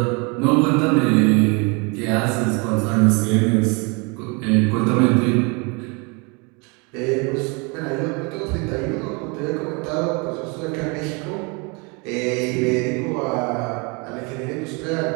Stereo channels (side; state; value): left; quieter; 30.8 dB